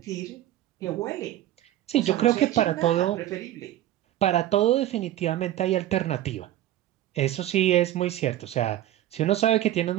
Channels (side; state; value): left; quieter; 13.4 dB